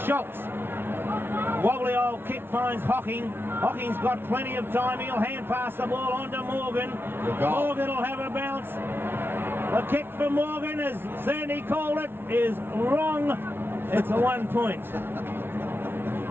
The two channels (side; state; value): left; late; 0.11 ms